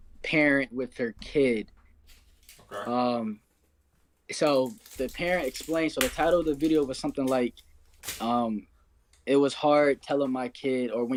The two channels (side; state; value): both; identical; correlation 1.00